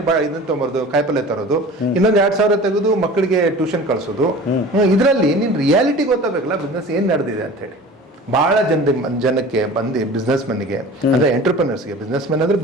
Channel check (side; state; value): both; normal; correlation 0.39